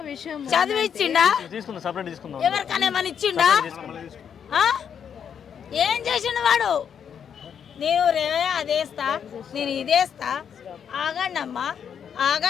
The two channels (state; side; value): quieter; right; 7.8 dB